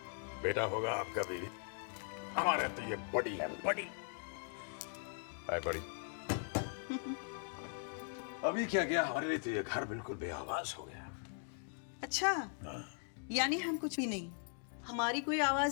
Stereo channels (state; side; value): silent; right; 51 dB below the other